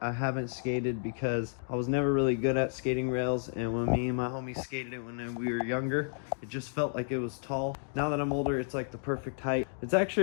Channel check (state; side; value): silent; right; digital silence